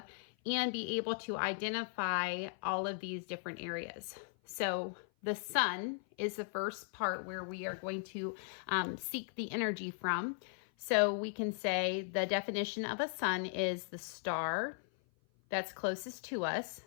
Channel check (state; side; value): silent; right; 53 dB below the other